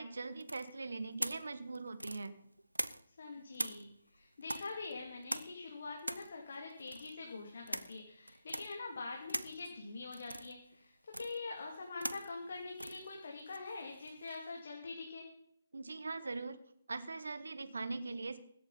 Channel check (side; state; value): both; inverted; correlation -0.90